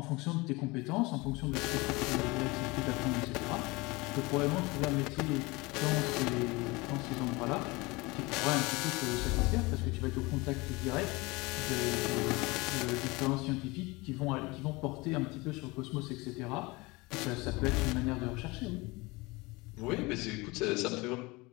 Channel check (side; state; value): right; quieter; 23.9 dB